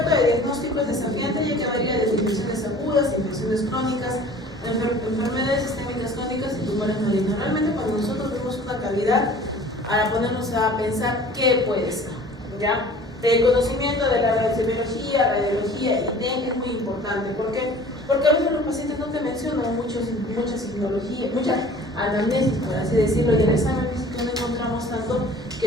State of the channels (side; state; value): both; normal; correlation 0.47